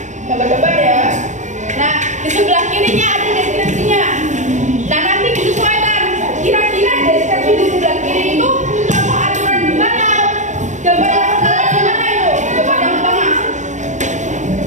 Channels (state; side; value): late; left; 0.35 ms